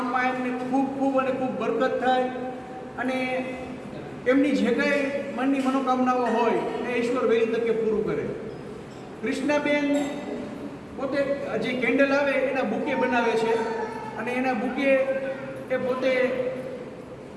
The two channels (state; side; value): identical; both; correlation 1.00